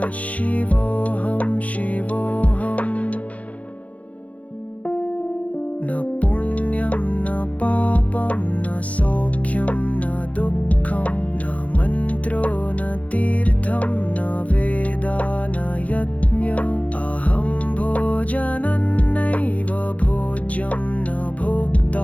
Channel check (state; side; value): late; right; 0.068 ms